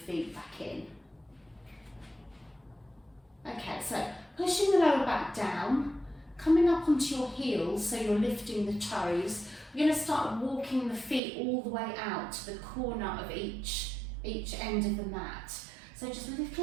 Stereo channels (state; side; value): drops out; left; at 11.2 s